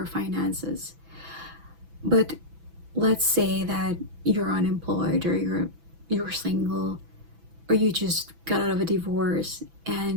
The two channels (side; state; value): left; late; 6.0 ms